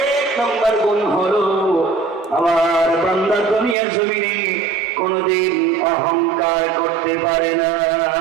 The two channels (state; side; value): drops out; left; at 3.8 s